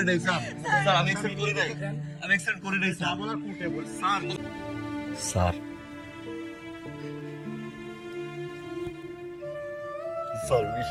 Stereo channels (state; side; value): identical; both; correlation 1.00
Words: নাই স্যার। স্যার আমি এক্সিডেন্ট করে নাই, আমি এক্সিডেন্ট করে নাই স্যার। আমার কোটে বল স্যার। স্যার স্যার